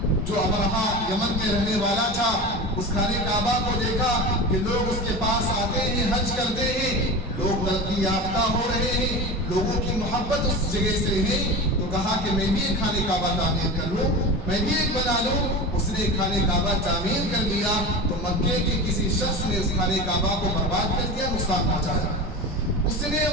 جو ابرہا یمن کے رہنے والا تھا، اس خانہ کعبہ کو دیکھا کہ لوگ اس کے پاس آتے ہیں، حج کرتے ہیں، لوگ ترقی یافتہ ہو رہے ہیں، لوگوں کی محبت اس جگہ سے ہے، تو کہا کہ میں بھی ایک خانہ کعبہ تعمیر کر لوں، میں بھی ایک بنا لوں۔ اس نے خانہ کعبہ تعمیر کر لیا تو مکے کے کسی شخص نے اس خانہ کعبہ کو برباد کر دیا، نقصان پہنچایا۔ اس نے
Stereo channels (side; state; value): both; normal; correlation 0.29